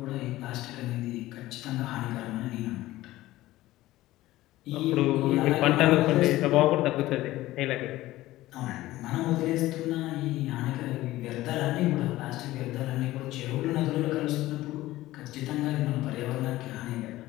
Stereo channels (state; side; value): quieter; right; 16.6 dB